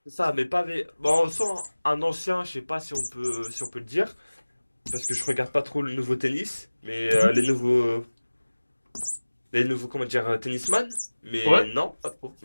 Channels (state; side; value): inverted; both; correlation -1.00